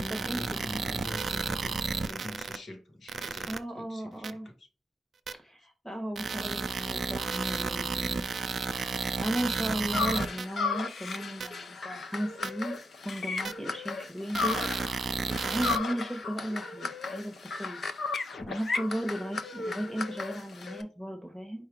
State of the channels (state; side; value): normal; both; correlation 0.81